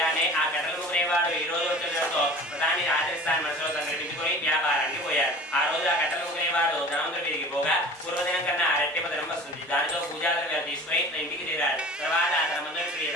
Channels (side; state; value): both; normal; correlation 0.41